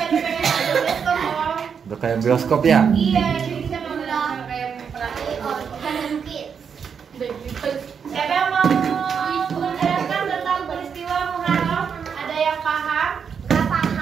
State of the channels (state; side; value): quieter; left; 6.8 dB